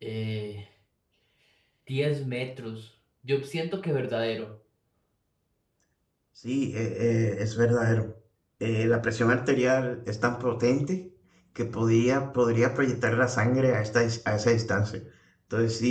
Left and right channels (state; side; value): identical; both; correlation 1.00